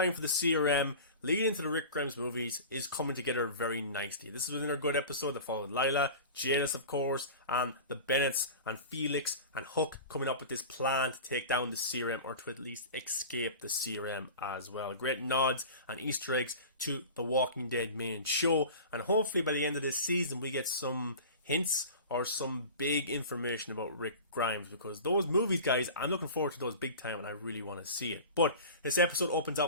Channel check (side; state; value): both; inverted; correlation -0.35